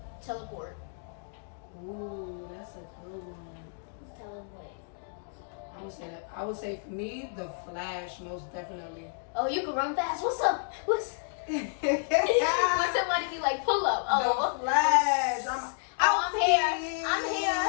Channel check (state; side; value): silent; right; digital silence